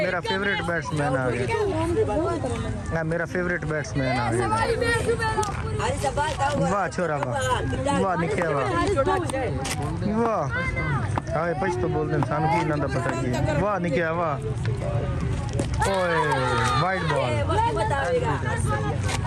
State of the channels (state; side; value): identical; both; correlation 1.00